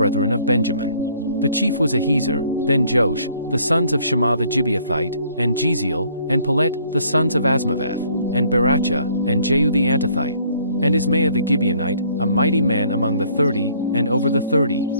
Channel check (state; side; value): inverted; both; correlation -0.61